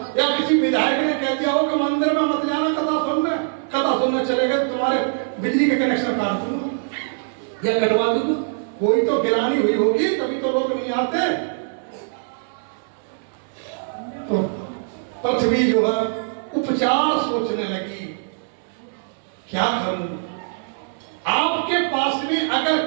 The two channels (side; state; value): left; silent; 63 dB below the other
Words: या किसी विधायक ने कह दिया हो कि मंदिर में मत जाना, कथा सुनने चले गए, तुम्हारे बिजली के कनेक्शन काट दूंगा या कटवा दूंगा। कोई तो गिरानी हुई होगी, तभी तो लोग नहीं आते। तो पृथ्वी जो है उपचार सोचने लगी, क्या करूं? आपके पास में अगर